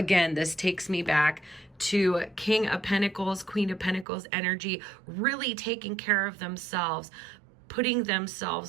this takes me back to King of Pentacles, Queen of Pentacles energy, really taking care of themselves, putting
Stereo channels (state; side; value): drops out; left; at 4.0 s